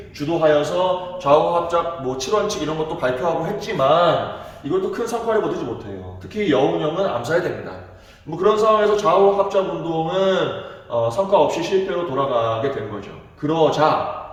주도하여서 좌우 합작 7원칙 이런 것도 발표하고 했지만 이것도 큰 성과를 거두지 못해요. 특히 여운형은 암살이 됩니다. 그런 상황에서 좌우 합작 운동은 성과 없이 실패로 돌아가게 된 거죠. 그러자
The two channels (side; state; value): both; identical; correlation 1.00